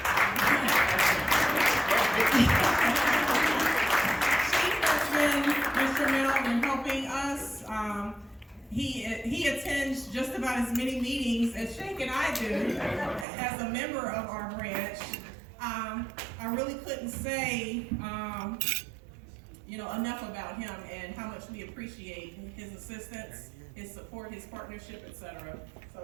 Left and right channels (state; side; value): drops out; left; at 13.2 s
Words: Instrumental in helping us. He attends just about as many meetings as Sheikh and I do as a member of our branch. I really couldn't say enough about him and how much we appreciate his assistance, his support, his partnership, etc.